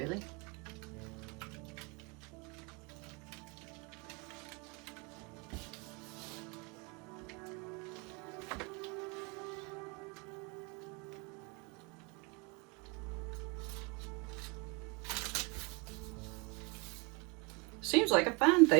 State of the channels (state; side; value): quieter; left; 28.8 dB